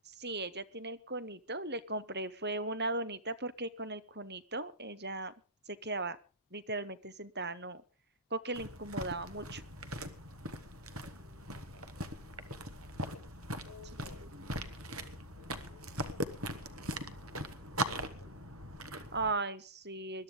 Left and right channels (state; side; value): normal; both; correlation -0.14